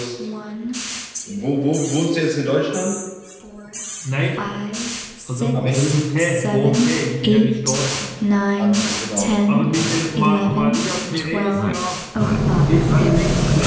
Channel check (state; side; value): identical; both; correlation 1.00